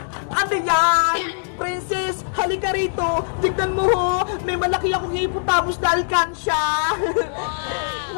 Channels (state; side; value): silent; right; digital silence